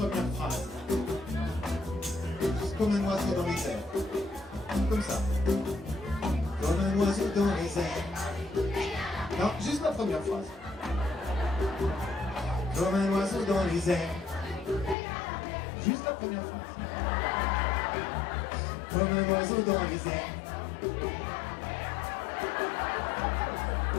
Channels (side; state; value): right; drops out; at 15.0 s